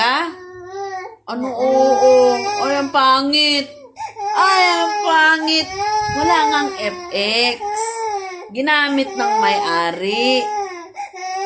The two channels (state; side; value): identical; both; correlation 1.00